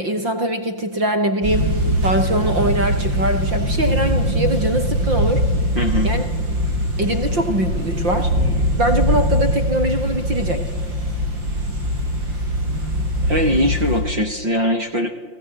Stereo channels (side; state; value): left; late; 5.7 ms